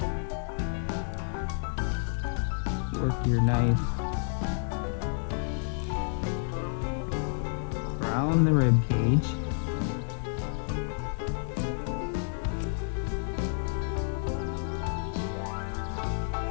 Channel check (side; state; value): right; silent; digital silence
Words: work your knife around the rib cage,